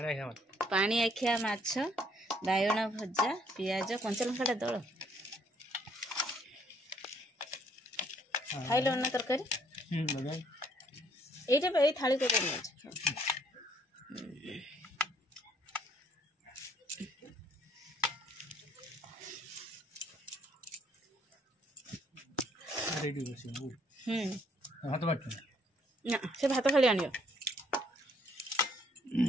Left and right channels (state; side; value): normal; both; correlation 0.66